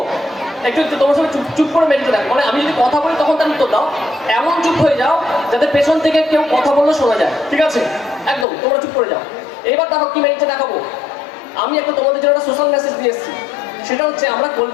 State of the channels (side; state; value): right; drops out; at 8.5 s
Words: একটু তোমার সঙ্গে চুপ করে মেডিতে দেখো, মানে আমি যদি কথা বলি তখন তার উত্তর দাও, এমন চুপ হয়ে যাও যাতে পেছন থেকে কেউ কথা বললে শোনা যায়, ঠিক আছে? একদম তোমরা চুপ করে যাও। এবার দেখো কি মেডিতে দেখাবো। আমি একটা তোমাদের জন্য একটা সোশ্যাল মেসেজ দিয়ে এসেছি, সেটা হচ্ছে আমরা কোল্ড